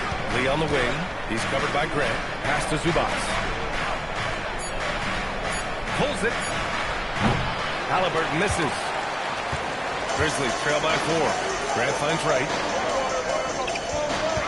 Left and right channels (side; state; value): both; identical; correlation 1.00